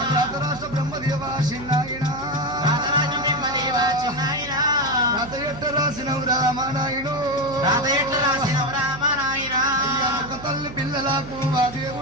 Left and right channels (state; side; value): noise; right; hum, 14 dB below the sound